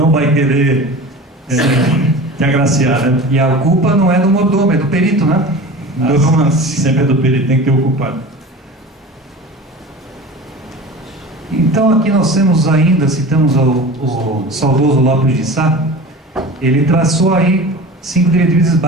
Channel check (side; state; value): both; normal; correlation 0.35